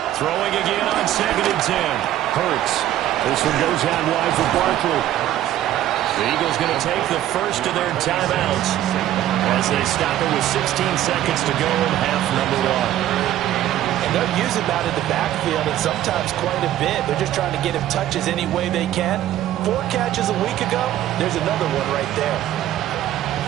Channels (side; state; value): left; quieter; 12.8 dB